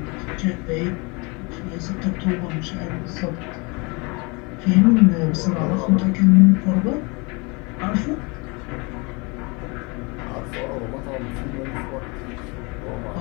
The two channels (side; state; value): right; quieter; 28.9 dB